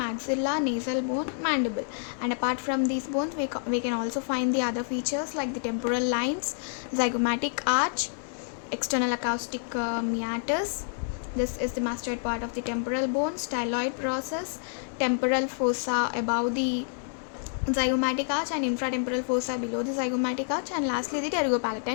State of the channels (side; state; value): right; silent; digital silence